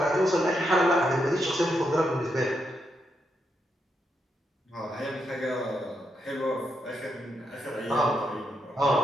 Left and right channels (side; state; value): both; normal; correlation 0.82